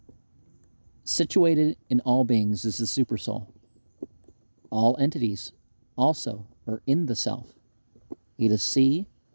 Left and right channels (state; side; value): inverted; both; correlation -1.00